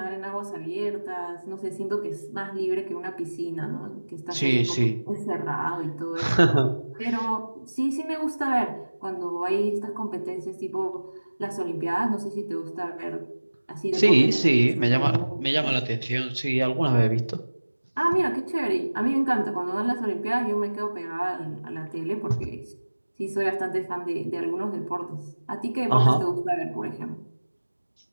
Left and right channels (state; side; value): inverted; both; correlation -1.00